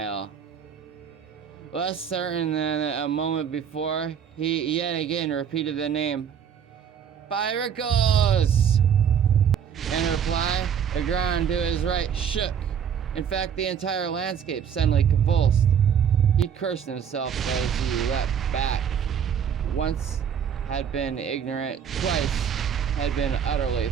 Less certain than a moment before, he yet again repeated the name. Pyracos! In reply, the ground to his right shook. In fact, the entire landscape suddenly convulsed. He cursed himself as he leapt back. Once had been ignorant, twice had been utterly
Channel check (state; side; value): quieter; left; 8.0 dB